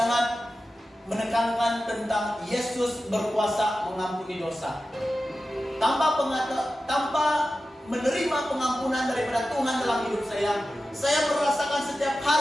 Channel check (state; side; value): normal; both; correlation 0.93